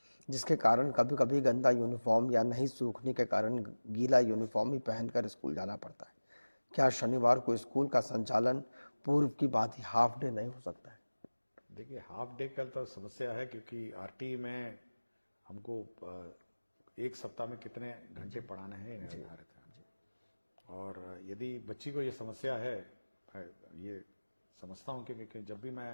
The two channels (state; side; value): inverted; both; correlation -1.00